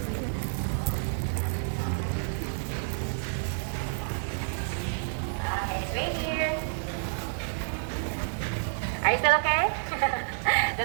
Right here. Are you still okay?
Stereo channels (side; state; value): left; silent; 58 dB below the other